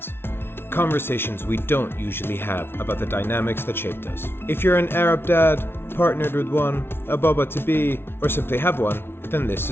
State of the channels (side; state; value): right; late; 0.11 ms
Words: Conversations we don't usually have about the dynamics that shaped us. If you're an Arab dad, partnered with one, a baba-to-be, or simply have one, then this